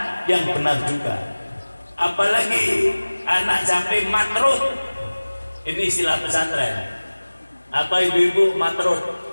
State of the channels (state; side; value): inverted; both; correlation -1.00